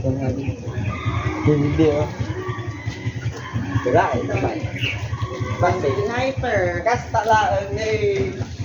nga. Hindi oh. Wala ito ba? Basta Sniper. kasta lang eh.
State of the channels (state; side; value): identical; both; correlation 1.00